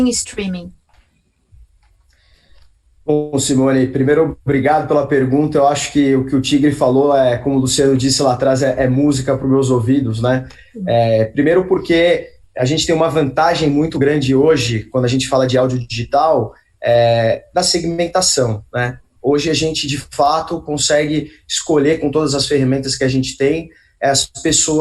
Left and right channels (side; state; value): both; identical; correlation 1.00